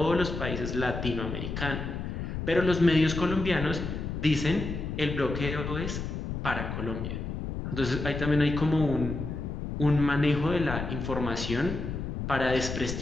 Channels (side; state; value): left; noise; rumble, 5 dB below the sound